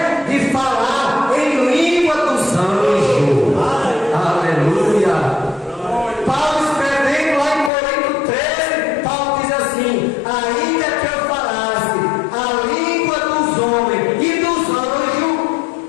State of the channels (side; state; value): right; drops out; at 7.7 s